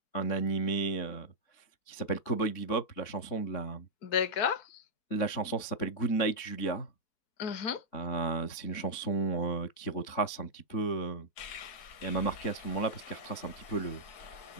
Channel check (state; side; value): late; right; 3.6 ms